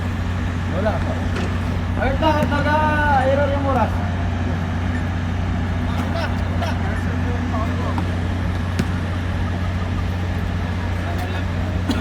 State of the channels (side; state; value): both; identical; correlation 1.00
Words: Wala. Ayun lang at nag-error yung oras.